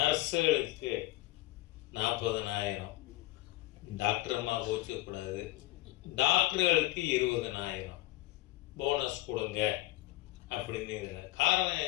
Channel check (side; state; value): right; quieter; 18.1 dB